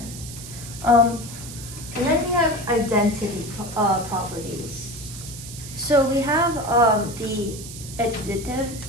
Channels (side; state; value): right; noise; hiss, 12 dB below the sound